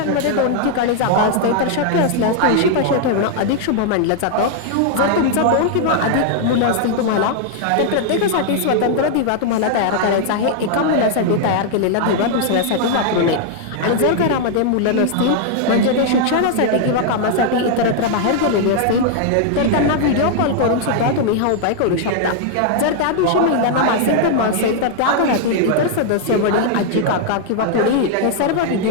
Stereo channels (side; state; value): both; different; correlation -0.01